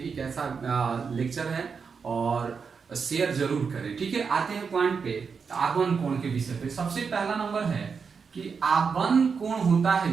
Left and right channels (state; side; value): quieter; left; 5.7 dB